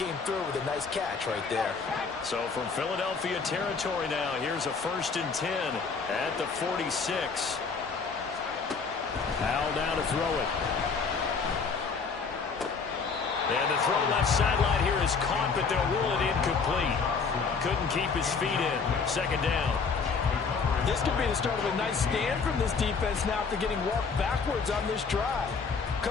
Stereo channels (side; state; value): right; quieter; 5.1 dB